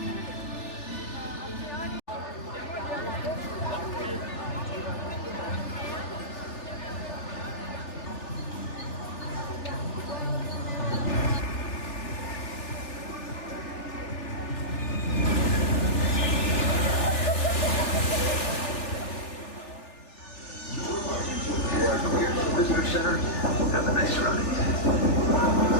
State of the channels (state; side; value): late; right; 3.4 ms